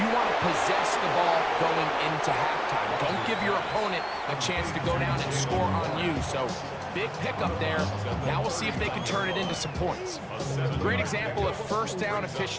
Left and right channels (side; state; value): both; identical; correlation 1.00